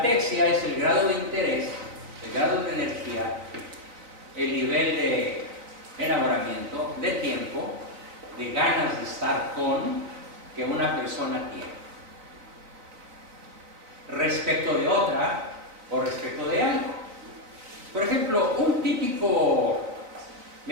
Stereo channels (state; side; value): late; left; 4.0 ms